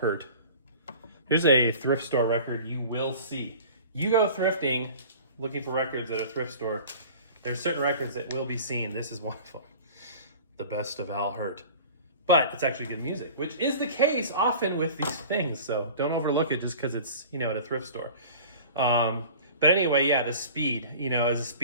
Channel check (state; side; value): inverted; both; correlation -0.41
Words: Here's a thrift store record you will see. You go thrifting, looking for records at a thrift store, there's certain records that will be seen. This is one of them. The best of Al Hirt. But it's actually good music, which is the case often with these things. So don't overlook it just because it's, at a thrift store. But anyway, yeah, the speed, is a